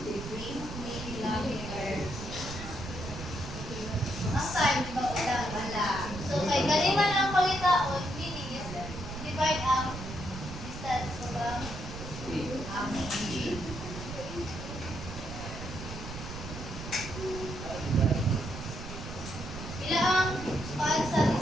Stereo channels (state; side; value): noise; right; rumble, 9 dB below the sound